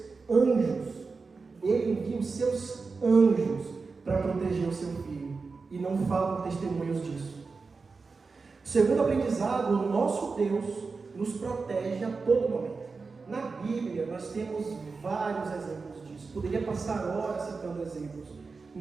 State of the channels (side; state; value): left; quieter; 4.4 dB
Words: anjos, para proteger o seu filho, e não faltam testemunhos disso. Segundo aprendizado, o nosso Deus nos protege a todo momento. Na Bíblia nós temos vários exemplos disso, poderia passar horas citando exemplos.